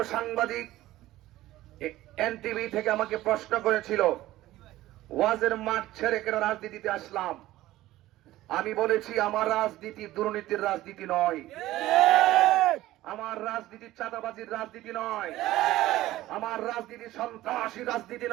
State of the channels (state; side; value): quieter; left; 15.9 dB